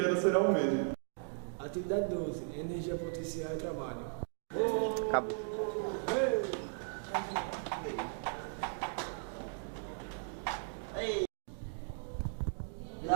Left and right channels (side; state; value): left; silent; digital silence